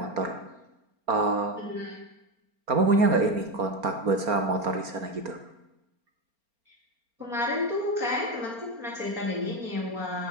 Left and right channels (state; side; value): late; left; 4.4 ms